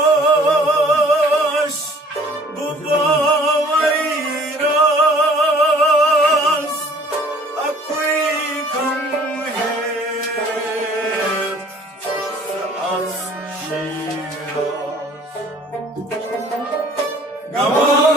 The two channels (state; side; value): normal; both; correlation 0.53